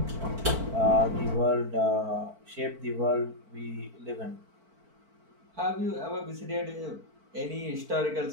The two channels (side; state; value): left; late; 4.5 ms